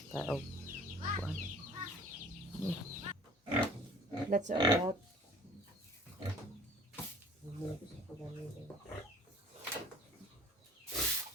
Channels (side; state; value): both; normal; correlation 0.50